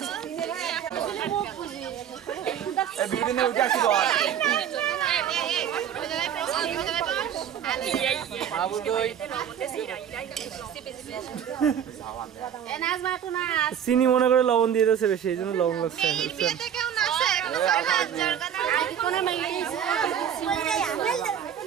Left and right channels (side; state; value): left; quieter; 9.1 dB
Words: এই বিল্ডিং এ উঠে আসি তো বাবু কই? এ নাচ মাটু নাচ। চিনি মনে করে লবণ দিয়ে দিয়েছে বেশি, এই জন্য লবণ লাগছে। কোনে মাইলিছে